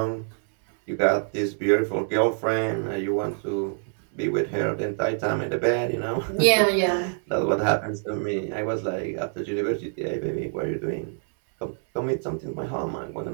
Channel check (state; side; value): silent; left; 61 dB below the other